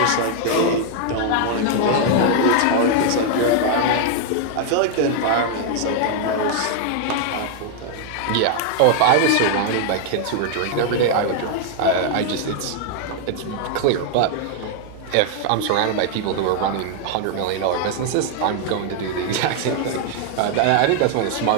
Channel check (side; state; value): both; different; correlation 0.00